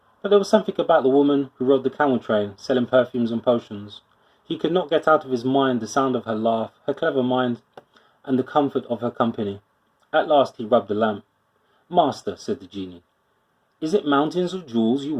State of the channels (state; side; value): identical; both; correlation 1.00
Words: But there was something about the woman who rode the camel train, selling perfumes and potions. He could not get out of his mind the sound of her laugh, her clever mind, and the comfort of her company. At last he rubbed the lamp. "Master," said the genie, "is it mountains of jewels you